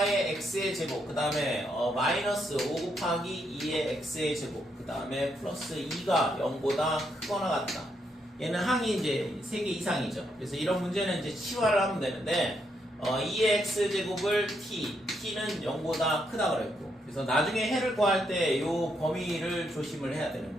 x의 제곱 그 다음에 마이너스 5 곱하기 2의 x의 제곱 그 다음에 플러스 2가 0보다 크거나 같다. 얘는 항이 이제 3개 이상이죠. 그래서 이런 문제는 이제 치환을 하면 되는데 2의 x제곱을 t는 0보다 크다 그랬고 그래서 나중에 해를 구할 때 이 범위를 조심을 해야 되는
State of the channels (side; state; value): both; normal; correlation 0.78